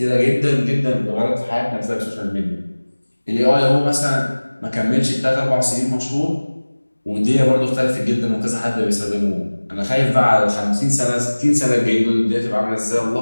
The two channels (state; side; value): inverted; both; correlation -1.00